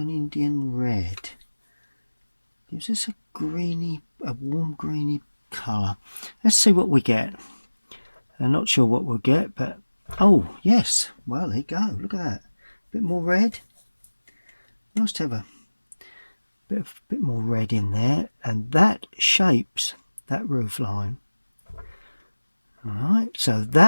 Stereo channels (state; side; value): inverted; both; correlation -1.00